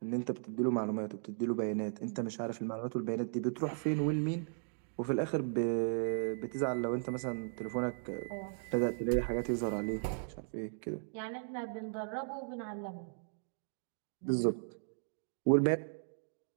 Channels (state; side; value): silent; left; digital silence